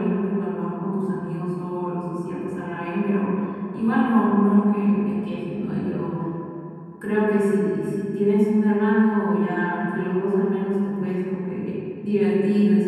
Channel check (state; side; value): identical; both; correlation 1.00